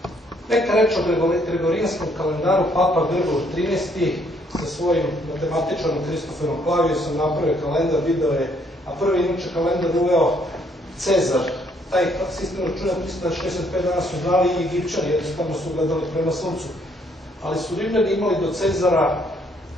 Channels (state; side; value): normal; both; correlation 0.68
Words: Neka reč o gregorijanskom kalendaru, Papa Grigor XIII sa svojim matematičarom Kristoferom Klavijusom napravio kalendar, video je, a prvi inače kalendar uveo Cezar. Taj sistem računa 365 dana su znali i Egipćani, jednostavno su gledali prema suncu. Ali su Rimljani imali do Cezara